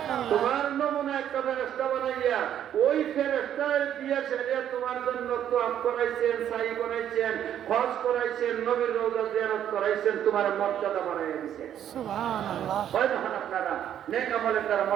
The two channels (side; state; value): left; quieter; 10.2 dB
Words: তোমার নমুনা একটা ফেরেশতা বানাইয়া ওই ফেরেশতার দিয়ে ছেড়ে তোমার জন্য তোয়াফ করাইছেন, সাই করাইছেন, হজ করাইছেন, নবীর রওজা জিয়ারত করাইছেন, তোমার মর্যাদা বাড়াইয়া দিয়েছেন। সুবহানাল্লাহ, হয় যখন আপনারা নেক আমলের দ্বারা